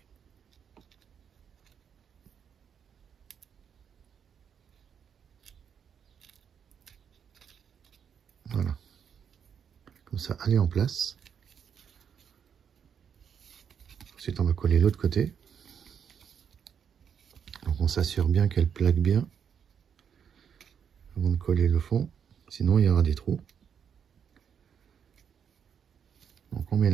Voilà. Comme ça, elle est en place. Ensuite, on va coller l'autre côté. Donc, on s'assure bien qu'elle plaque bien avant de coller le fond. Sinon, il y aura des trous. Donc, on met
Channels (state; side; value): quieter; left; 7.6 dB